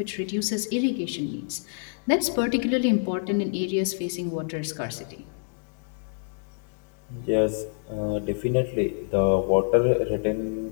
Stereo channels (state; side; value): silent; right; digital silence